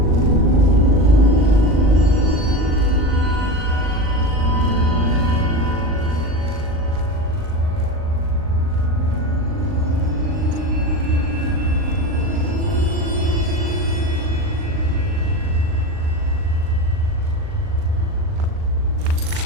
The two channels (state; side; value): late; left; 39 ms